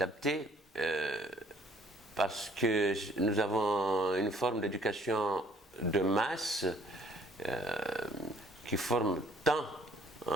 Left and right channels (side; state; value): both; normal; correlation 0.60